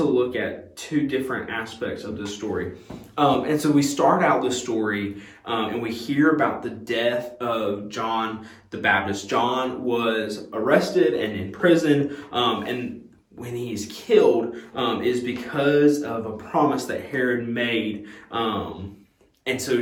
look at two different aspects of this story. And so we start out the story and we hear about the death of John the Baptist. John was arrested and in prison, and when he's killed is because of a promise that Herod made. And so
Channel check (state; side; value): identical; both; correlation 1.00